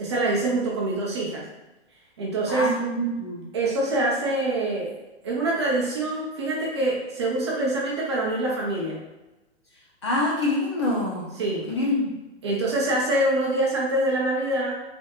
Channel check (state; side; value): normal; both; correlation 0.23